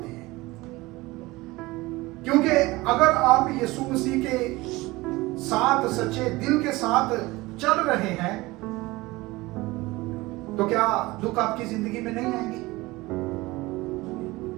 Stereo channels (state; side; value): quieter; left; 20.8 dB